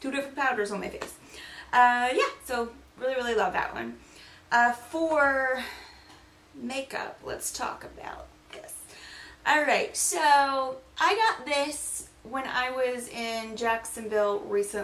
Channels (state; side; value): identical; both; correlation 1.00